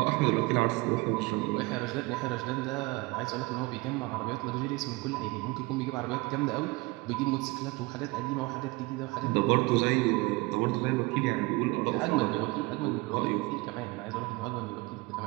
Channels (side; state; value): left; quieter; 23.9 dB